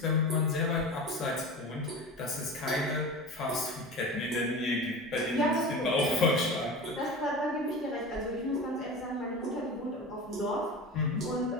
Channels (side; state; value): both; normal; correlation 0.31